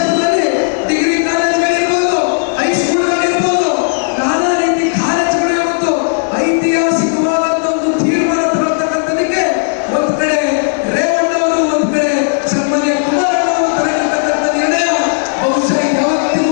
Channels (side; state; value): right; silent; digital silence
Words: ಡಿಗ್ರಿ ಕಾಲೇಜುಗಳಿರ್ಬೋದು, ಹೈಸ್ಕೂಲ್ಗಳಿರ್ಬೋದು, ನಾನಾ ರೀತಿ ಕಾಲೇಜುಗಳು ಇವತ್ತು ಐತಿಹಾಸಿಕವಾದಂಥ ಒಂದು ತೀರ್ಮಾನ ತರತಕ್ಕಂಥದಕ್ಕೆ ಒಂದು ಕಡೆ ರೇವಣ್ಣ ಅವರು, ಒಂದು ಕಡೆ ಸನ್ಮಾನ್ಯ ಕುಮಾರಣ್ಣ ಅವರು ತರತಕ್ಕಂಥ ನಿರ್ಣಯ ಬಹುಶಃ